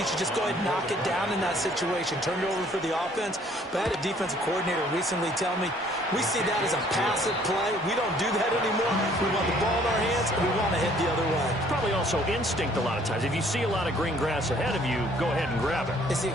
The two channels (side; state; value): both; normal; correlation 0.59